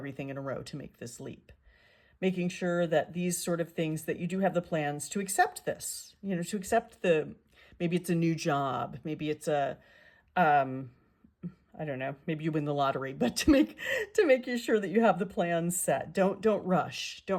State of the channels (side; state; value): both; identical; correlation 1.00